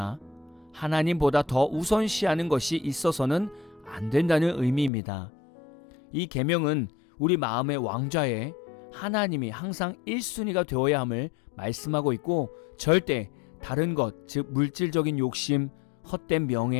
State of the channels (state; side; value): drops out; right; at 4.9 s